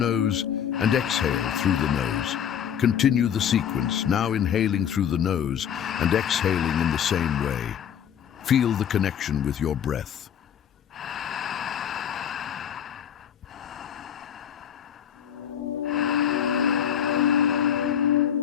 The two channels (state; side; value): quieter; right; 8.8 dB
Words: and exhale through the nose. Continue the sequence, now inhaling through the nose and exhaling in the same way. Feel the connection with your breath.